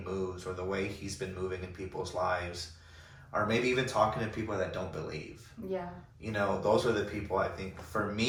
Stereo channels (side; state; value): both; identical; correlation 1.00